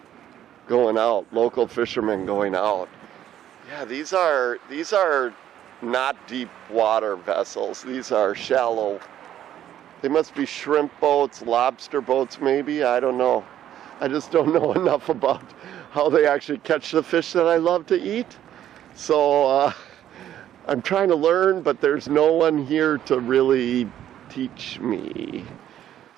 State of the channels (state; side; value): quieter; left; 11.3 dB